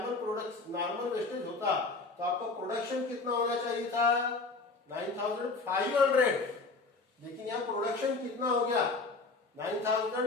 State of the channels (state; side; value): quieter; right; 3.8 dB